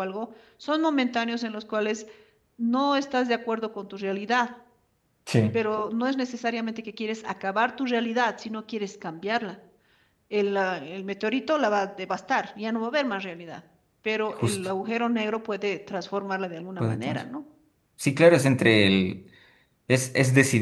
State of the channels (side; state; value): both; identical; correlation 1.00